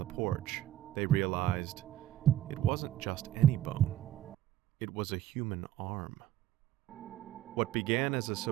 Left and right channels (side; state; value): left; quieter; 12.5 dB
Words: porch, they realized it wasn't just any bone. It was a human arm. What began as a